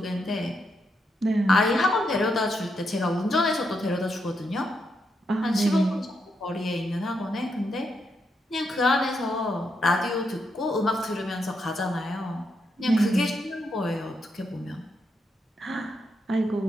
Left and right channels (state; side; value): normal; both; correlation 0.81